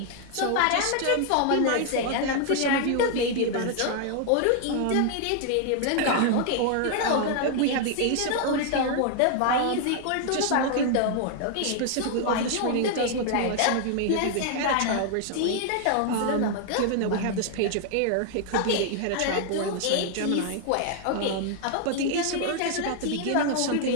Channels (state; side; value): different; both; correlation 0.00